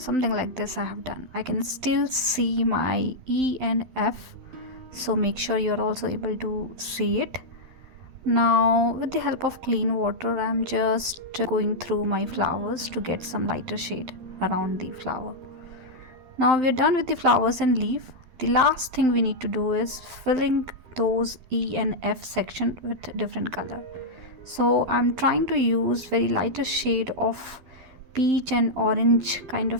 like this I have done. I can still see my E and F, so make sure you're also able to see it. Now with the help of clean water, I'm just going through my flowers to get some lighter shade around the flower. Now we're done with the flowers and leaf. The last thing we need to do is filling those E and F section with different color. So I'm trying to use very lighter shade of peach and orange kind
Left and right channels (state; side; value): late; left; 12 ms